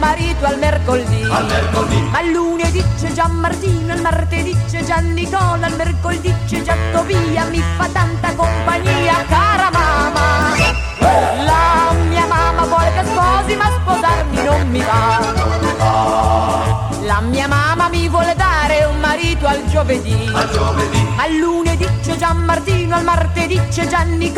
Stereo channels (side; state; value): both; identical; correlation 1.00